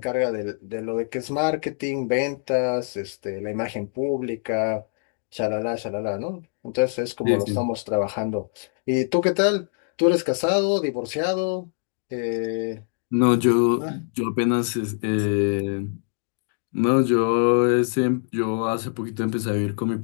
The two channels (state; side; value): silent; right; 58 dB below the other